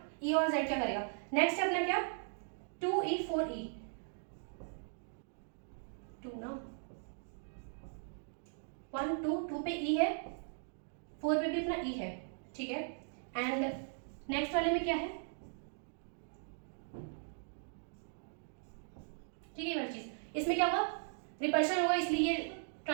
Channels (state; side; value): silent; left; digital silence